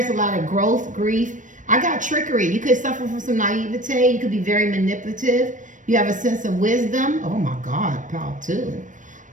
a lot of growth, grief. I got trickery. You could suffer from some naivete. You could be very manipulative. You have a sense of wisdom. Oh my God, pal too.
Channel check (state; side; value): late; left; 0.37 ms